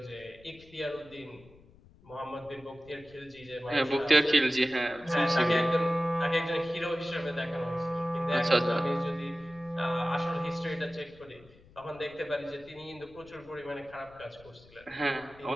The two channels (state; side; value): noise; left; rumble, 24 dB below the sound